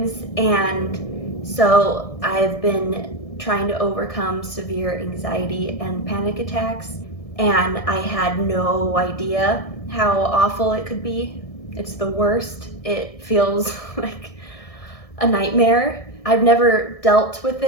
And so I've been trying to overcome severe anxiety and panic attacks, and I had no idea how awful it could be. It's the worst. It feels like a nightmare. I've never dealt with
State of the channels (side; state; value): right; late; 1.6 ms